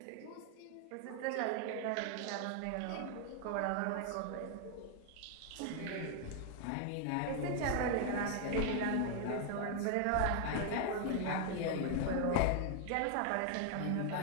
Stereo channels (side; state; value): both; different; correlation 0.00